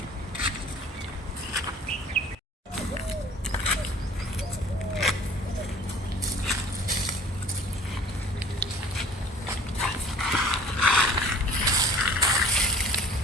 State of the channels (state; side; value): normal; both; correlation 0.49